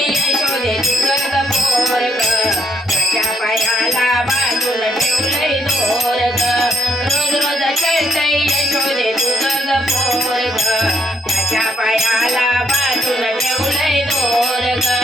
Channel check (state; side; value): normal; both; correlation 0.73